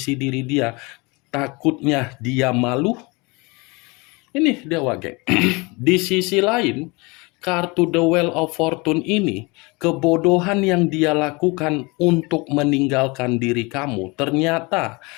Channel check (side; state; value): right; quieter; 26.6 dB